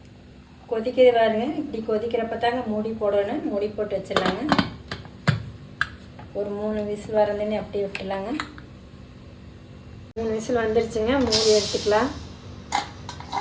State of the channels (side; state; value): both; identical; correlation 1.00